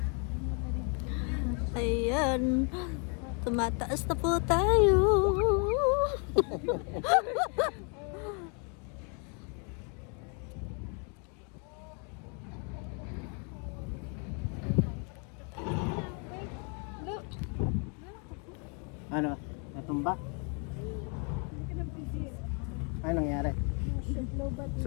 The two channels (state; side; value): quieter; right; 37.7 dB